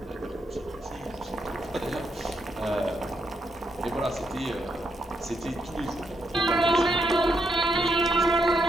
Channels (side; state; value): both; normal; correlation 0.80